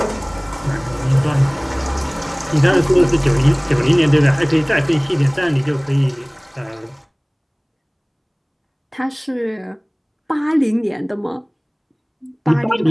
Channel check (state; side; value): identical; both; correlation 1.00